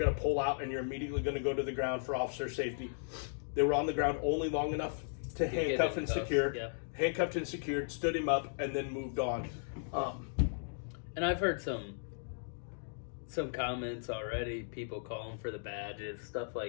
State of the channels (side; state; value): right; silent; digital silence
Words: to pull out and you're immediately going to go to the ground for officer safety. They were on the ground only long enough to handcuff and secure. Yeah. Handcuffed and secured, stood him up, and then moved on. And I've heard some comments already, people calling for the badges, stuff